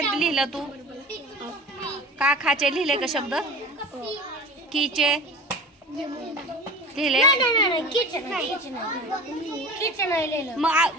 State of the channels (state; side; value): normal; both; correlation 0.35